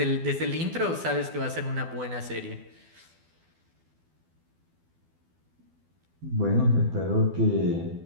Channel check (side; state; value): left; late; 12 ms